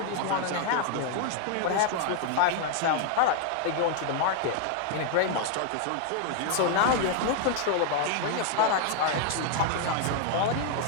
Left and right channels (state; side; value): different; both; correlation 0.00